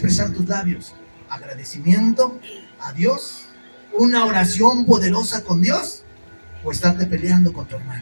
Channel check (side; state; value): both; inverted; correlation -1.00